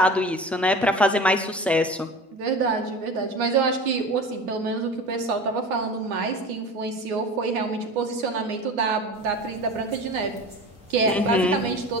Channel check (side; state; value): both; normal; correlation 0.34